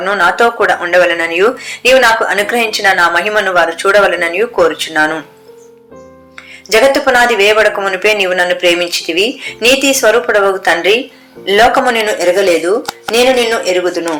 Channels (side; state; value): both; identical; correlation 1.00